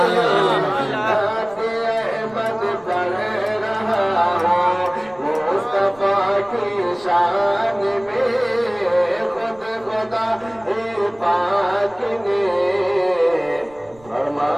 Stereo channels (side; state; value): right; noise; rumble, 26 dB below the sound